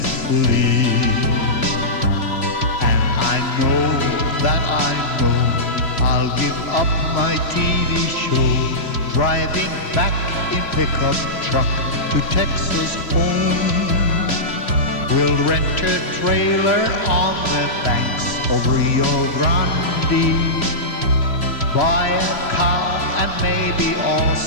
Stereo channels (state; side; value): late; right; 3.2 ms